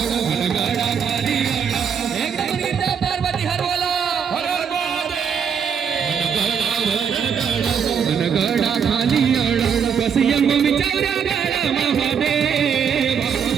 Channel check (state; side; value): quieter; left; 7.1 dB